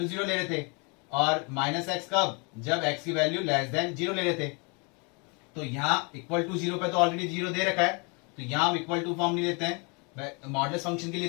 zero ले रहे थे, और माइनस x कब? जब x की वैल्यू लेस देन जीरो ले रहे थे। तो यहाँ इक्वल टू जीरो पे तो ऑलरेडी जीरो दे रखा है, तो यहाँ हम इक्वल टू फॉर्म नहीं लेते हैं। मॉडुलस फंक्शन के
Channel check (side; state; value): right; quieter; 32.7 dB